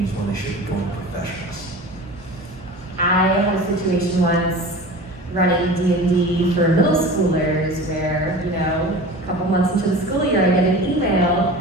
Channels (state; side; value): normal; both; correlation 0.36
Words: when they should be going to professionals. I had a situation once running D&D for middle schoolers where, a couple months into the school year, I get an email